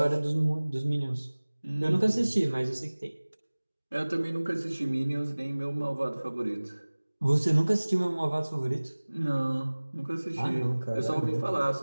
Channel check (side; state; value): both; inverted; correlation -1.00